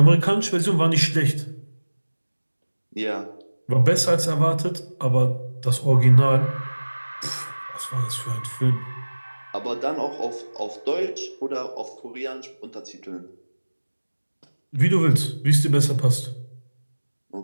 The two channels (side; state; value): both; inverted; correlation -1.00